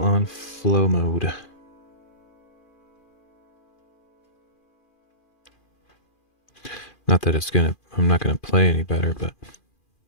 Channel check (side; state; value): right; late; 2.4 ms